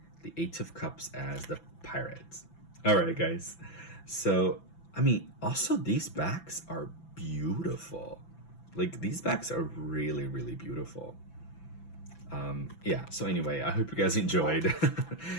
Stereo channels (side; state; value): right; late; 6.0 ms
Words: the Eight of Cups as the Pirates. All right, guys. So, I mean, also these backs are beautiful. Like, these bags are really, really beautiful. Yeah, so anyway, I hope you guys enjoyed